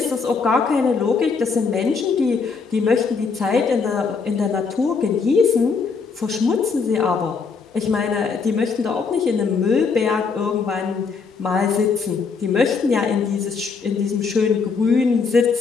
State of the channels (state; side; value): quieter; right; 5.1 dB